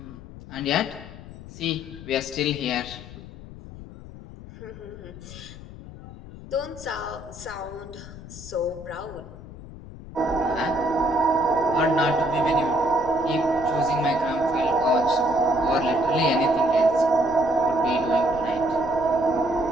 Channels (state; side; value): noise; left; rumble, 15 dB below the sound